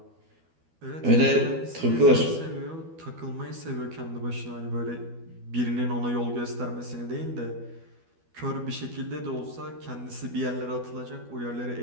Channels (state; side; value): late; left; 12 ms